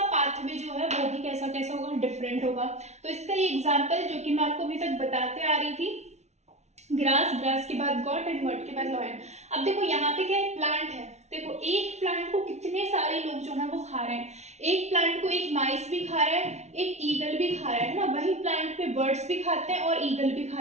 पाथवे जो है वो भी कैसा कैसा होगा, डिफरेंट होगा। तो इसका ये एग्जाम्पल जो कि मैं आपको अभी तक बताते आ रही थी, ग्रास, ग्रास के बाद गॉट एंड गॉट के बाद लॉयन। अब देखो यहाँ पे क्या है, प्लांट है। देखो एक प्लांट को कितने सारे लोग जो है वो खा रहे हैं। एक प्लांट को एक माइस भी खा रहा है, एक ईगल भी खा रहा है ना। वही प्लांट पे बर्ड्स भी खाते हैं और ईगल भी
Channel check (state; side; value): late; left; 0.32 ms